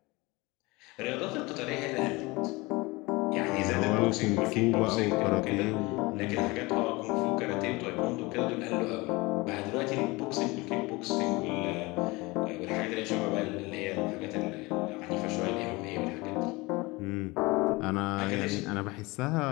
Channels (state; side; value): quieter; right; 23.6 dB